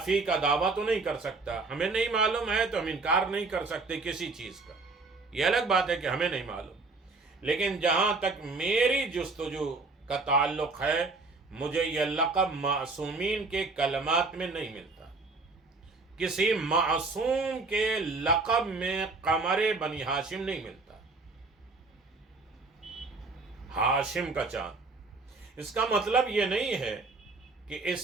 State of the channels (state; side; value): quieter; left; 3.8 dB